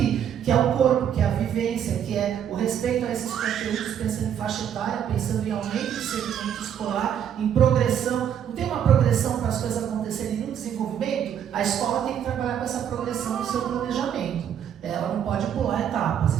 que é o corpo, que é a vivência, que é o respeito a esses conteúdos, pensando em faixa etária, pensando em aumento de segmento escolar, em progressão. Não tem uma progressão para as coisas acontecerem no desenvolvimento? A escola tem que trabalhar com essa progressão no seu planejamento. Ela não pode pular etapas,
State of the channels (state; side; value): quieter; left; 9.1 dB